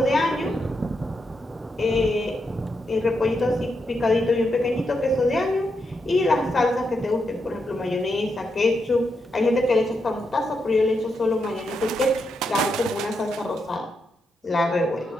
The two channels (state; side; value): normal; both; correlation 0.83